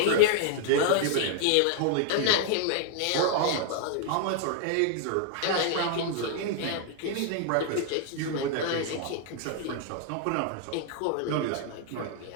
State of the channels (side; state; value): both; different; correlation 0.00